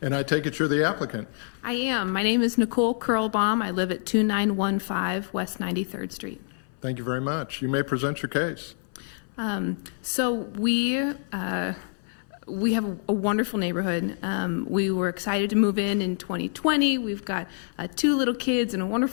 I take it you're the applicant. I am. My name is Nicole Curlbaum. I live at 2915 West 93rd Street. Thank you very much. You may present your case. So we have a wonderful neighborhood. We were excited to move in 2020. We've got 2 little kids and a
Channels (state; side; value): silent; right; 58 dB below the other